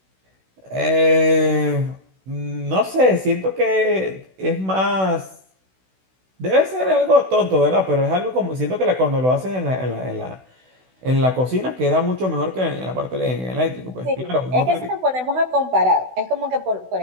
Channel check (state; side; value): late; left; 16 ms